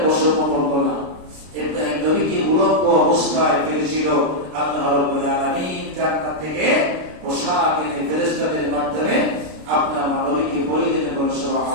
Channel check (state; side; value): late; left; 33 ms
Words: বছর করলো না। ইব্রাহিম নবীকে উলম্ব অবস্থায় ফেলেছিল। আল্লাহ রাব্বুল আলামিন জান্নাত থেকে পোশাক এনে ফেরেশতাদের মাধ্যমে আপনার নবীকে পরিয়ে দিতে বলেন।